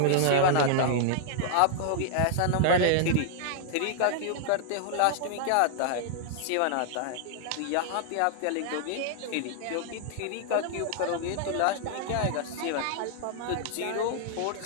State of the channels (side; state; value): both; different; correlation -0.01